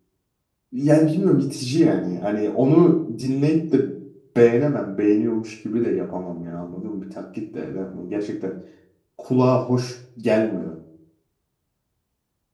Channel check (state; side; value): identical; both; correlation 1.00